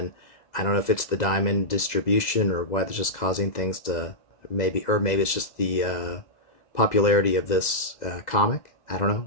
I don't know if it's the diamond distribution or why they're just causing things to maybe it's just the popularity of this comic. I don't know,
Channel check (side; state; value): right; late; 2.0 ms